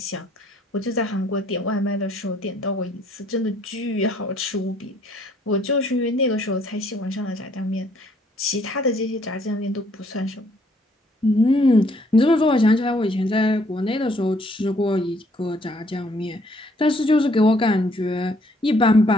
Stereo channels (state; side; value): normal; both; correlation 0.65